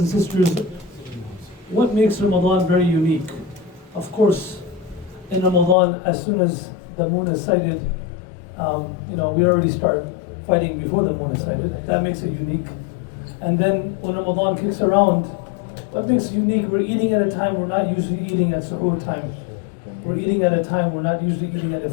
and sisters, what makes Ramadan very unique? Of course, in Ramadan, as soon as the moon is sighted, we already start fighting before the moon is sighted. That makes it unique. And then when Ramadan kicks around, what makes it unique? We're eating at a time we're not usually eating at suhoor time. We're eating at a time we're not usually eating at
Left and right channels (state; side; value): drops out; right; at 5.8 s